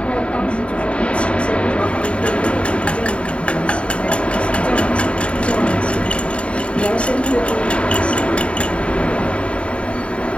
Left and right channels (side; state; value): right; late; 0.060 ms